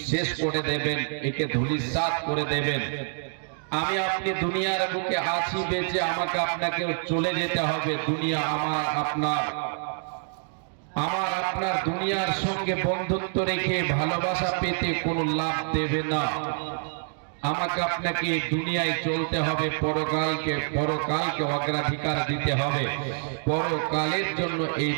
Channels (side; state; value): left; silent; digital silence